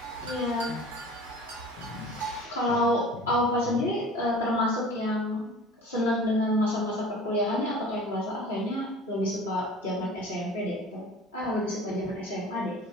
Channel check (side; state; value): both; normal; correlation 0.42